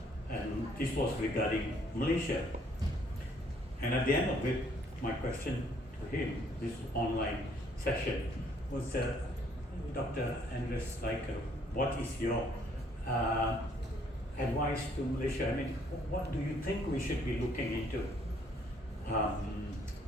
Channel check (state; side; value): normal; both; correlation 0.64